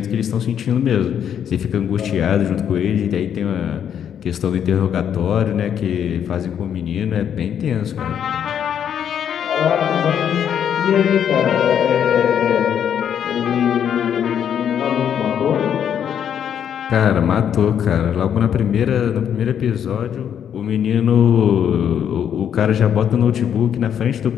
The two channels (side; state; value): right; quieter; 8.9 dB